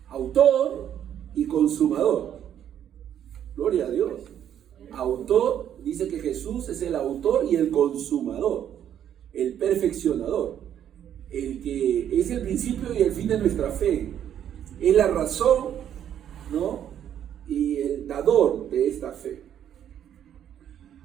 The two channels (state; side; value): quieter; left; 10.0 dB